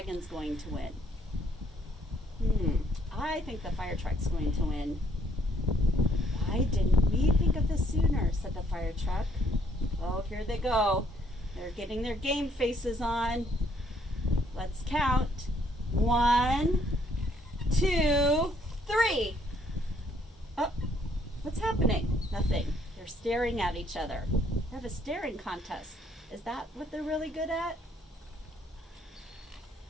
going to win? I think the fire truck's going to win. Why didn't we think of this sooner, said the fire truck. Oh, here they go. They're getting their game faces on. Let's count. 1, 2, 3. Oh, what's happening? Nothing. They're staring at each other. They have a staring contest. Is that what they're really good at?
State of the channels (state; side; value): normal; both; correlation 0.67